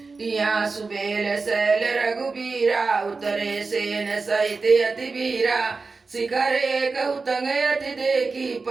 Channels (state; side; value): quieter; left; 4.2 dB